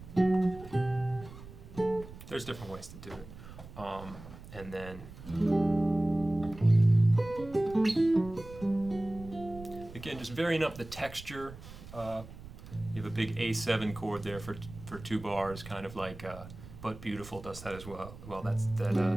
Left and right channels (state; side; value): noise; right; rumble, 15 dB below the sound